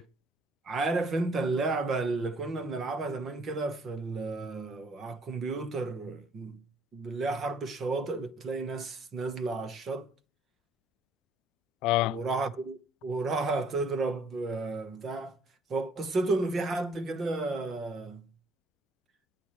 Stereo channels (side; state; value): both; normal; correlation 0.60